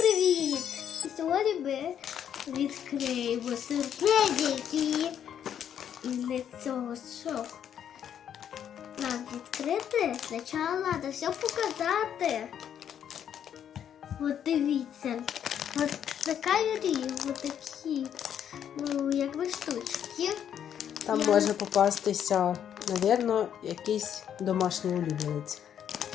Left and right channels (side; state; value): right; quieter; 9.2 dB